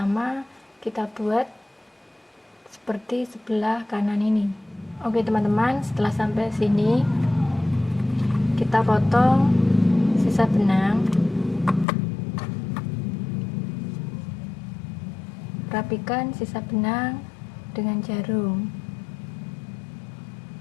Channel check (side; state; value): right; drops out; at 11.9 s